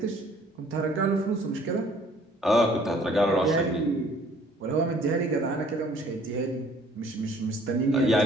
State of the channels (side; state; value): both; normal; correlation 0.57